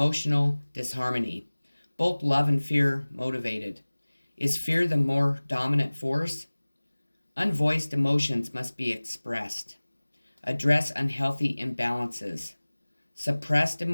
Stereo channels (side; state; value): both; inverted; correlation -1.00